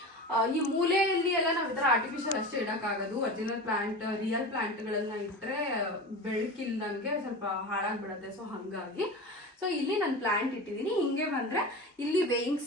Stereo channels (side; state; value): both; normal; correlation 0.29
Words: ಈ ಮೂಲೆಯಲ್ಲಿ ಎಲ್ಲ ನಾವು ಈ ಥರ ಆರ್ಟಿಫಿಷಿಯಲ್ ಅಷ್ಟೇ ಇಡೋಕ್ಕಾಗೋದು. ಒರಿಜಿನಲ್ ಪ್ಲಾಂಟ್, ರಿಯಲ್ ಪ್ಲಾಂಟ್ಗಳನ್ನ ಇಟ್ಟರೆ ಬೆಳಕಿಲ್ದಂಗೆ ಸ್ವಲ್ಪ ಹಾಳಾಗ್ಬಿಡುತ್ತೆ. ಸೊ ಹಾಗಾಗಿ ಸೊ ಇಲ್ಲಿ ನಾನು ಪ್ಲಾಂಟ್ ಇಟ್ಟಿದ್ದೀನಿ. ಹಿಂಗೆ ಬಂದರೆ ಇಲ್ಲಿ ವೇಯಿಂಗ್